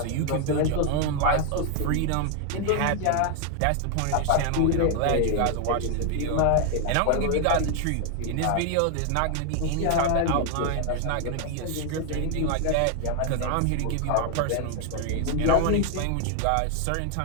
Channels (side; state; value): both; different; correlation 0.00